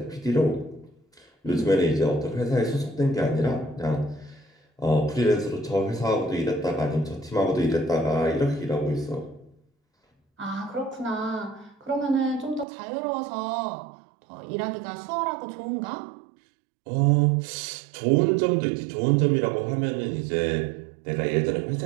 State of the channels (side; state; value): left; drops out; at 12.7 s